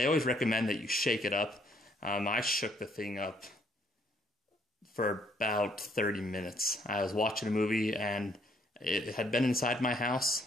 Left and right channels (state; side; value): normal; both; correlation 0.67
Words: always recommend that you shake it up. I shook the thing up for about 30 minutes. I was watching a movie and it had been inside my